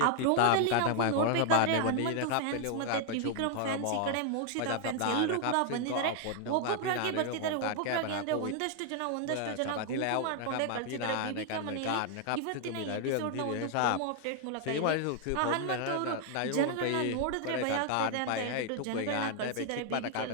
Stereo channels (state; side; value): different; both; correlation 0.00